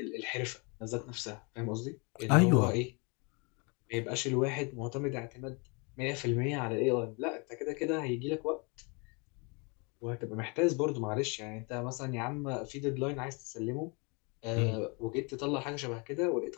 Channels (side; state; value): right; quieter; 31.9 dB